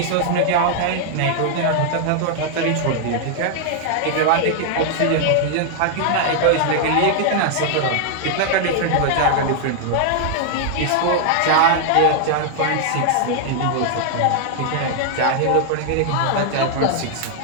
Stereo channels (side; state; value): both; different; correlation 0.00